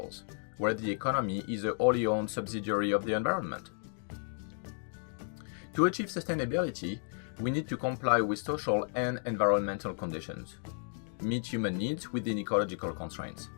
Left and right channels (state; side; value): silent; right; 56 dB below the other